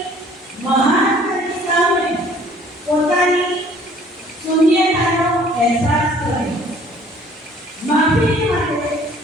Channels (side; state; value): both; normal; correlation 0.56